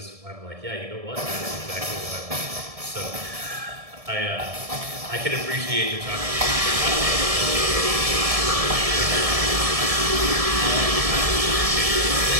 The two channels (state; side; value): late; left; 1.7 ms